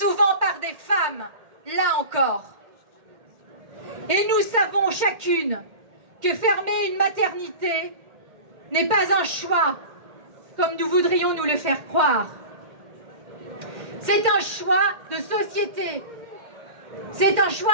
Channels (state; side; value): late; left; 2.1 ms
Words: par des femmes, là encore. Et nous savons chacune que fermer une maternité n'est pas un choix, comme nous voudrions nous le faire croire. C'est un choix de société, c'est un